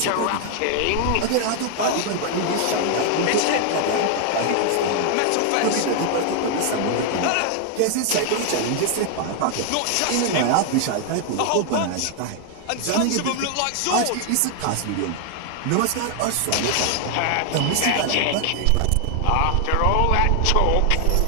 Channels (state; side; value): different; both; correlation 0.00